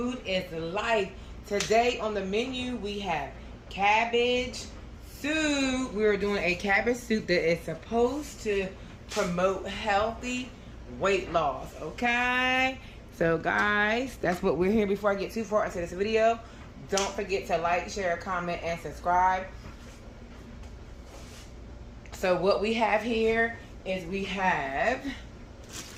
is life. Today on the menu we have cabbage soup. We're doing a cabbage soup that is supposed to promote healthy weight loss, okay? So guys, that's what we're here. Before I get too far into this video, don't forget to like, share, comment, and subscribe. So what we have here is we have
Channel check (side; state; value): both; identical; correlation 1.00